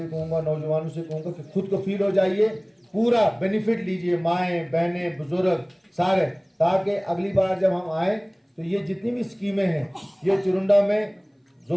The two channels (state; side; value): identical; both; correlation 1.00